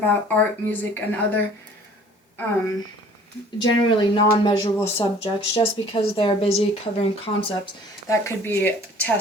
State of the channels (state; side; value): normal; both; correlation 0.51